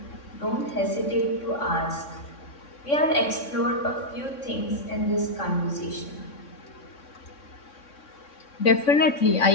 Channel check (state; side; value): late; right; 3.6 ms